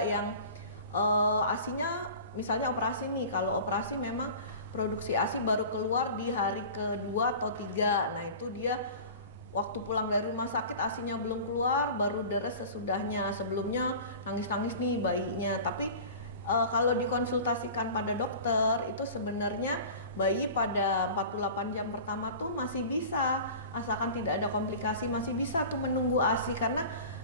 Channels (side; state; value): both; inverted; correlation -0.38